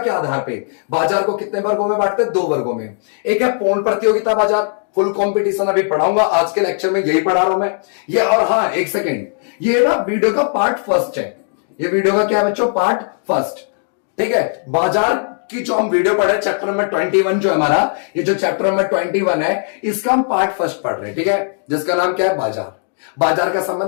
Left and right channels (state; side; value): silent; right; 68 dB below the other